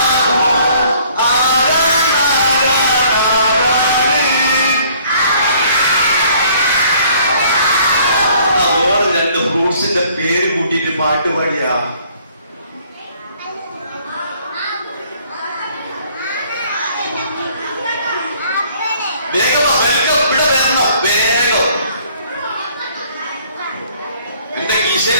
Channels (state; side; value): inverted; both; correlation -0.59